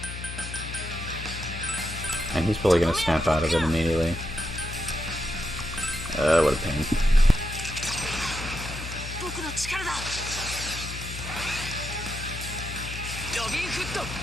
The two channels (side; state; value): left; noise; hum, 8 dB below the sound